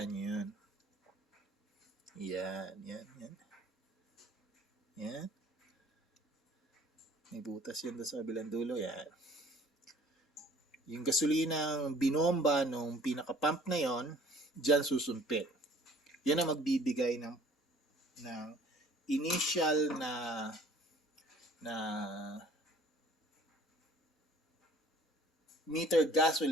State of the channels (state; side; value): normal; both; correlation 0.54